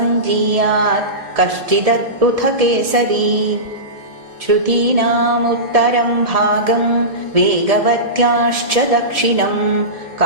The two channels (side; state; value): left; late; 1.7 ms